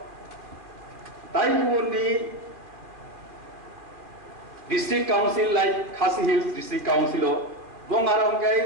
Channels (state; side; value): late; left; 2.4 ms